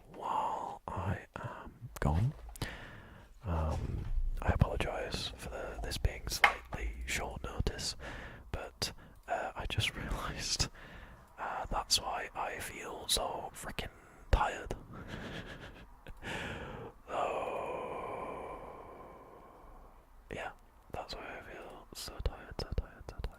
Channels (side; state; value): both; identical; correlation 1.00